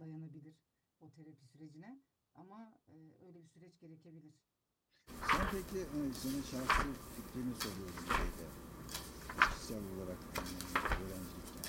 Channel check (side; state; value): both; identical; correlation 1.00